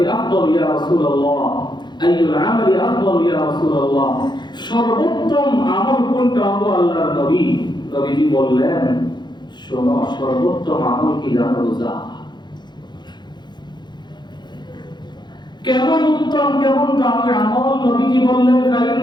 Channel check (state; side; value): late; right; 0.21 ms